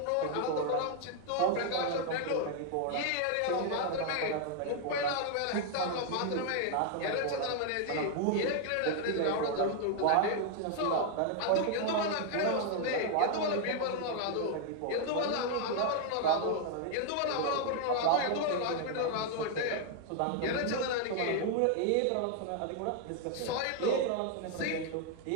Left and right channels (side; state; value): both; different; correlation 0.00